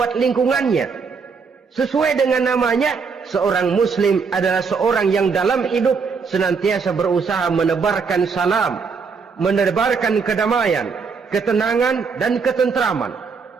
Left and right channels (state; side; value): quieter; left; 5.3 dB